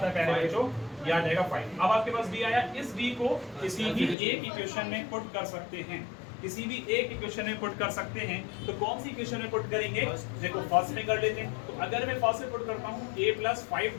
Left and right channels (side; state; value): right; drops out; at 4.2 s